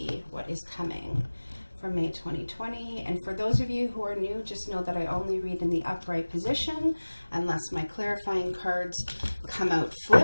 what is coming for May 2020. And for those of you who are new, just know that I only read in the upright position. Unless my clarifying cards come out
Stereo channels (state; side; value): inverted; both; correlation -1.00